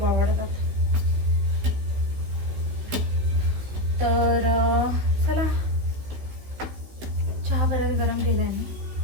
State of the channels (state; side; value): late; left; 16 ms